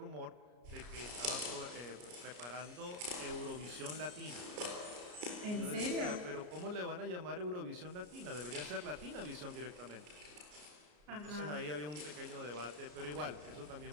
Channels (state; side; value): late; left; 33 ms